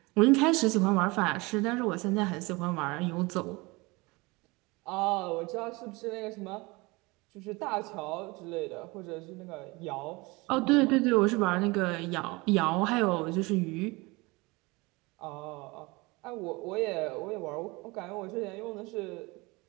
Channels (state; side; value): quieter; left; 24.4 dB